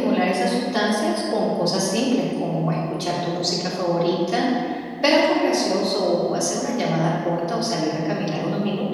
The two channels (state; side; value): identical; both; correlation 1.00